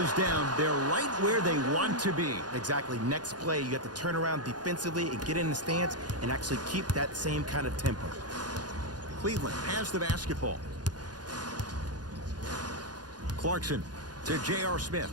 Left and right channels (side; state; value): left; late; 0.69 ms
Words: down. They're right where they want to be. Exactly. Next play, you have to turn around defensively and get in the stance and actually keep that same kind of tempo. Cleveland has the basketball. Clarkson to J.R. Smith.